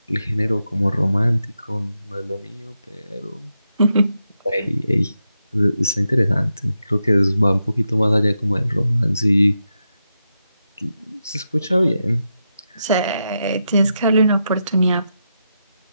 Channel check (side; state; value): both; inverted; correlation -0.86